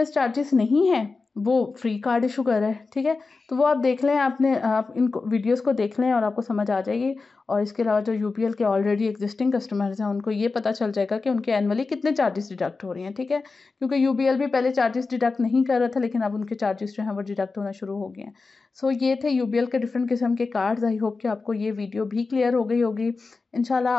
चार्जेस नहीं है वो फ्री कार्ड इशू कर रहा है। ठीक है, तो वो आप देख लें, आप इन वीडियोस को देख लें और आपको समझ आ जाएगी। और इसके अलावा जो यूपीएल के ऑलरेडी एग्जिस्टिंग कस्टमर्स हैं उनको ये पता चल जाएगा कि उनके एनुअली कितने चार्जेस डिडक्ट हो रही हैं। ठीक है, क्योंकि यूपीएल भी पहले चार्जेस डिडक्ट नहीं कर रहा था, लेकिन अब उनके चार्जेस जो हैं वो डिडक्ट होना शुरू हो गए हैं। सो ये थे यूपीएल के डिफरेंट किस्म के कार्ड्स। आई होप कि आपको ये वीडियो भी क्लियर हो गई होगी। इंशाल्लाह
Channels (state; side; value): quieter; right; 4.1 dB